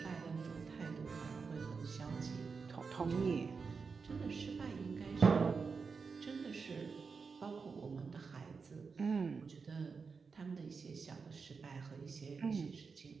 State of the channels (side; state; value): left; quieter; 5.1 dB